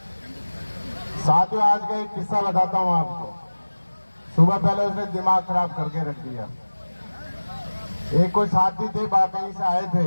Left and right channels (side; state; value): both; inverted; correlation -1.00